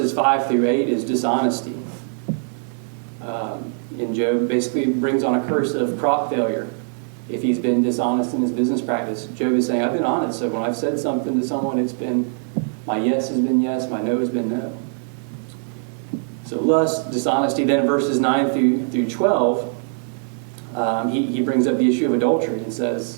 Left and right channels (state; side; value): silent; left; digital silence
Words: 5 through 8 is dishonesty. And Job basically brings on a curse of crop failure if he's been dishonest in his business practice. Job is saying, I've been honest, so when I've said something to someone, it's been, my yes has been yes, my no has been no. So lust, dishonesty. Then verses 9 through 12, he brings up the issue of adultery and